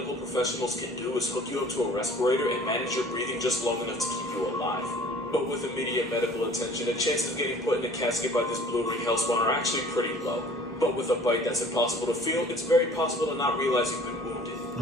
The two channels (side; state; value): both; normal; correlation 0.49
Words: professionals can do is hook you up to a respirator and manage your breathing just long enough to keep you alive. But with immediate medical attention, the chances of getting put in a casket by this blue ring hellspawn are actually pretty low. But with a bite that's impossible to feel, it's very possible to not realize you've been wounded.